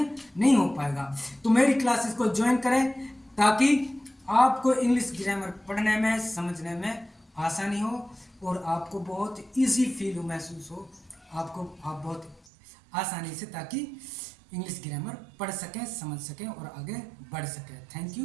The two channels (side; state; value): left; drops out; at 12.4 s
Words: नहीं हो पाएगा। तो मेरी क्लासेस को ज्वाइन करें ताकि आपको इंग्लिश ग्रामर पढ़ने में, समझने में आसानी हो और आपको बहुत ईजी फील महसूस हो, आप बहुत आसानी से, ताकि इंग्लिश ग्रामर पढ़ सकें, समझ सकें और आगे बढ़ सकें। Thank you,